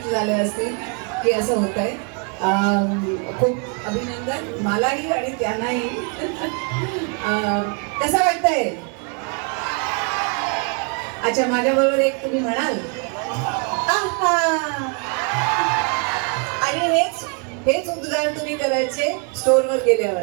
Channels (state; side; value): quieter; left; 35.9 dB